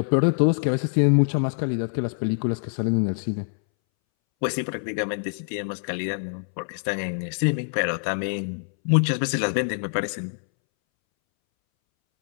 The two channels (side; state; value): right; silent; 62 dB below the other